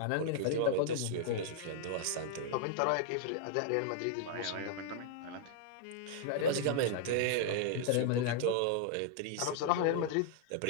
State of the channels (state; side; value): different; both; correlation 0.00